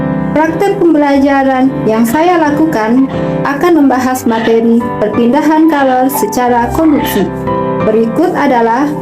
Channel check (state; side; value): identical; both; correlation 1.00